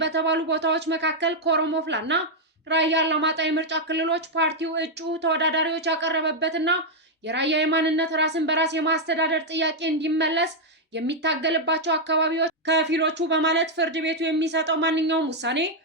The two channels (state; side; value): normal; both; correlation -0.01